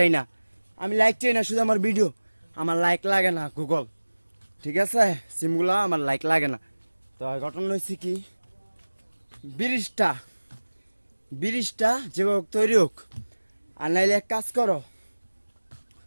না, আমি লাইক চাই না শুধু আমার ভিডিও, আমার লাইক লাগে না গুগল, ঠিক আছে? সিমগুলা আমার লাইক লাগে না। তো ঘটনা হয়েছে কি, ব্রিজটা ব্রিজটা যেভাবে তৈরি হোক, আর নাইলে এক কাজ করো,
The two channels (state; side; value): inverted; both; correlation -1.00